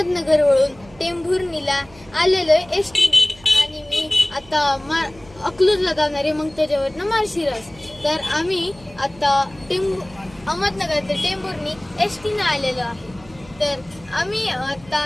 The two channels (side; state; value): right; noise; hum, 24 dB below the sound